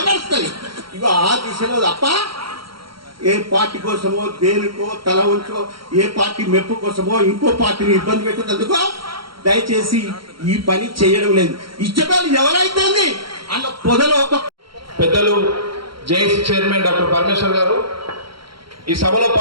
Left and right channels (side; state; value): left; late; 0.73 ms